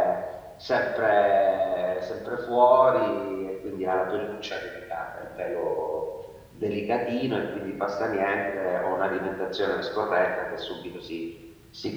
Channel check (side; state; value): both; identical; correlation 1.00